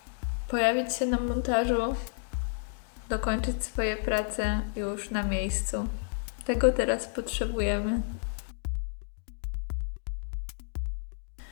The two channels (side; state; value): right; silent; digital silence